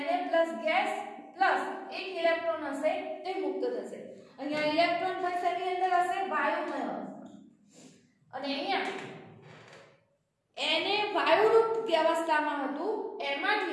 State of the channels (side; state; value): both; identical; correlation 1.00